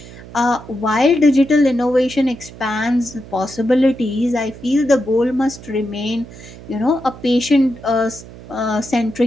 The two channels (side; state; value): right; noise; hum, 17 dB below the sound